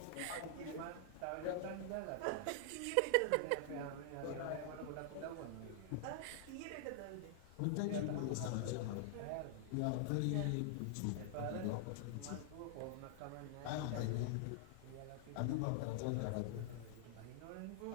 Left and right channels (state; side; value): different; both; correlation -0.01